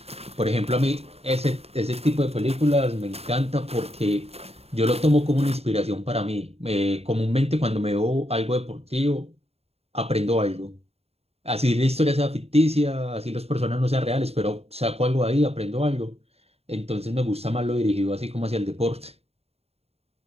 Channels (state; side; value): late; left; 0.30 ms